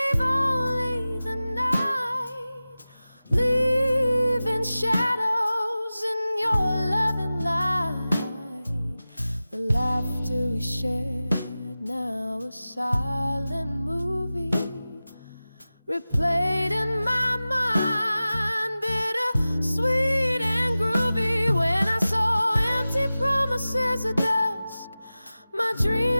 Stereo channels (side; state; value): both; inverted; correlation -0.96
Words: only the night, leaving shadows in your loving light. The laughter we shared, now a silent movie, replayed in my